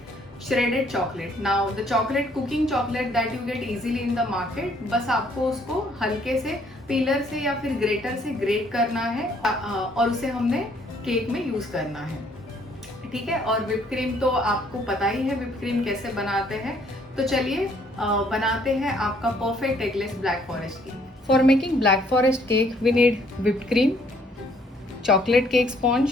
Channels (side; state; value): both; normal; correlation 0.64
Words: Shredded chocolate. Now the chocolate, cooking chocolate that you get easily in the market, बस आपको उसको हल्के से पीलर से या फिर ग्रेटर से ग्रेट करना है और उसे हमने केक में यूज करना है. ठीक है. और whipped क्रीम तो आपको पता ही है whipped क्रीम कैसे बनाते हैं, तो चलिए बनाते हैं आपका perfect eggless black forest cake. For making black forest cake we need whipped cream, chocolate cake